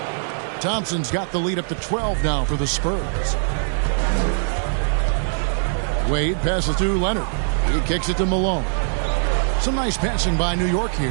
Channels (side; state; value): left; silent; digital silence